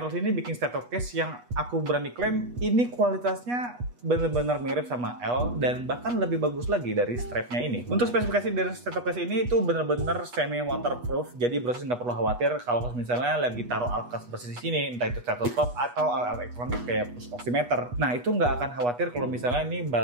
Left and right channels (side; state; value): left; late; 8.3 ms